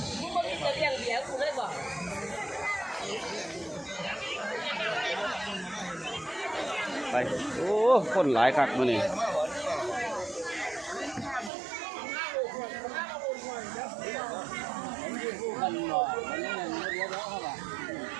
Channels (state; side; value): drops out; left; at 11.5 s